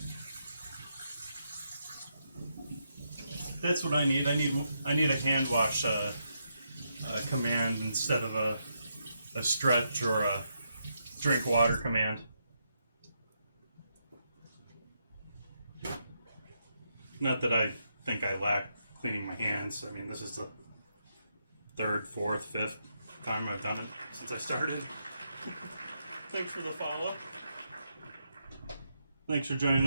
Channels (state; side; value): inverted; both; correlation -0.81